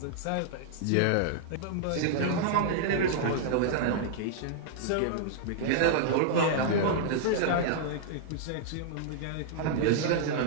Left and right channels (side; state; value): both; different; correlation -0.01